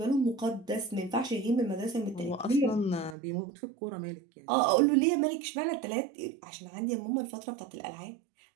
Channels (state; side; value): drops out; left; at 3.2 s